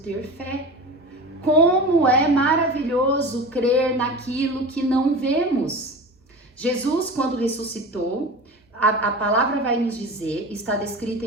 fé! Como é maravilhoso crer naquilo que não vemos! Jesus, quando ressuscitou, a palavra vai nos dizer, está descrita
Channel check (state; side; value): normal; both; correlation 0.32